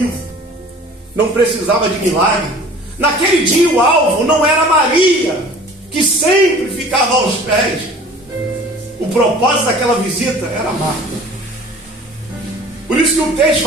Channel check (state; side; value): normal; both; correlation 0.46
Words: não precisava de milagre. Naquele dia o alvo não era Maria, que sempre ficava aos pés. O propósito daquela visita era Marta. Por isso que o texto